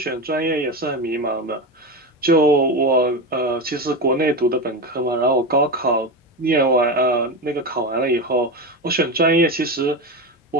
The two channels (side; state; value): both; normal; correlation 0.18